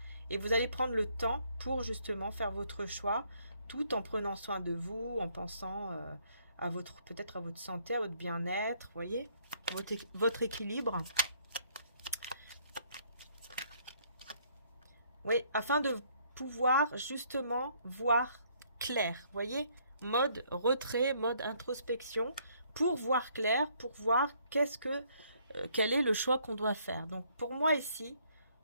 Et vous allez prendre le temps pour justement faire votre choix, tout en prenant soin de vous, en pensant à peut-être à votre santé, à votre bien-être, vous voyez, votre équilibre. Oui, afin de pouvoir justement voir clair, vous voyez, mode retrait, mode introspection, pour voir clair, pour voir quel est le choix qu'on doit faire. Donc pour moi ici,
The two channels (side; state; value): both; inverted; correlation -0.66